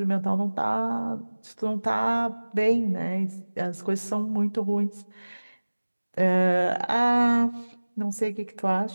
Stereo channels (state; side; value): inverted; both; correlation -1.00